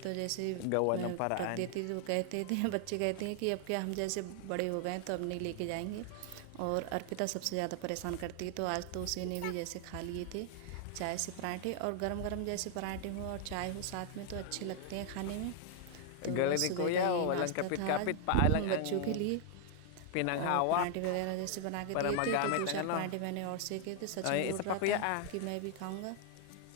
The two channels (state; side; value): different; both; correlation 0.00